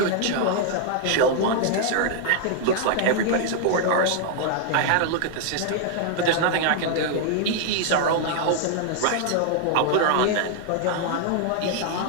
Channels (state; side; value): different; both; correlation 0.00